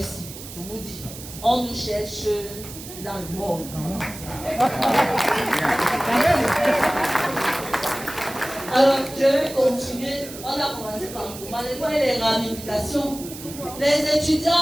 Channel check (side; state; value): right; noise; hiss, 13 dB below the sound